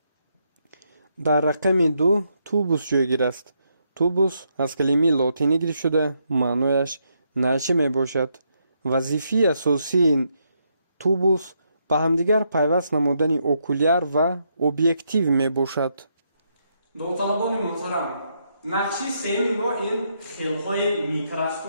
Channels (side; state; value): both; inverted; correlation -0.78